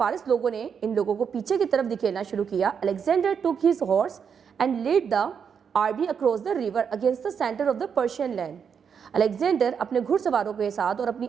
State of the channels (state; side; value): quieter; left; 7.0 dB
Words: लोगों ने इन लोगों को पीछे की तरफ धकेलना शुरू किया, Alexander took his horse and led the army across the river against the center of the Persian land. Alexander अपने घुड़सवारों के साथ और अपनी